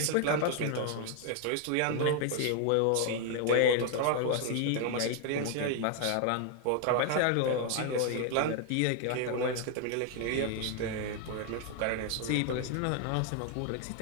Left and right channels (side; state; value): both; different; correlation 0.00